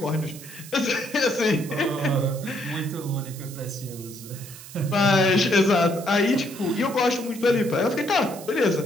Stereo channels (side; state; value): right; noise; hiss, 16 dB below the sound